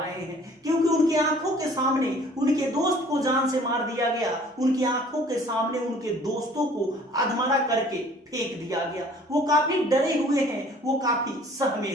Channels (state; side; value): normal; both; correlation 0.53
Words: हैं, क्योंकि उनकी आंखों के सामने उनके दोस्त को जान से मार दिया गया। उनकी आंखों के सामने उनके दोस्तों को अधमरा करके फेंक दिया गया। वो काफी डरे हुए हैं, वो काफी सहमे